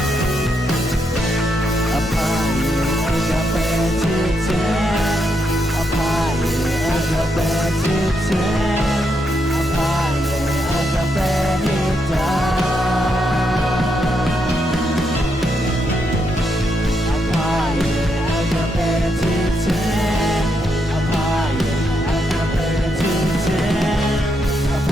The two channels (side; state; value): both; normal; correlation 0.80